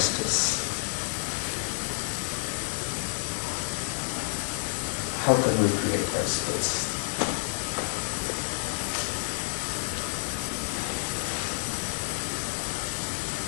How can we create that space?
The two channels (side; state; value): right; silent; digital silence